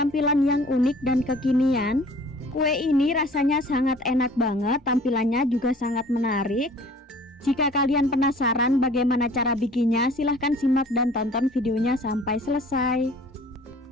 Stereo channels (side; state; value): both; normal; correlation 0.50